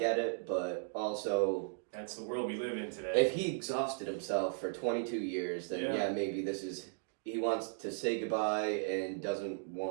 it, but also. That's the world we live in today. If he exhausted himself for 22 years, then maybe this is. He wants to say goodbye and doesn't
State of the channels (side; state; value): left; silent; digital silence